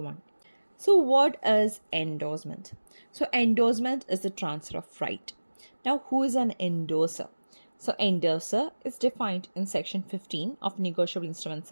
So what is endorsement? So endorsement is the transfer of right. Now who is an endorser? So endorser is defined in section 15 of Negotiable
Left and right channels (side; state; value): both; inverted; correlation -1.00